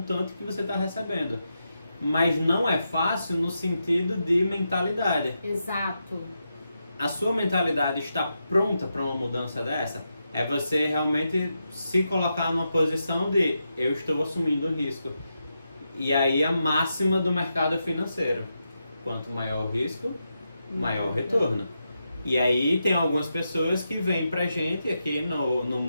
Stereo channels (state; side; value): inverted; both; correlation -0.86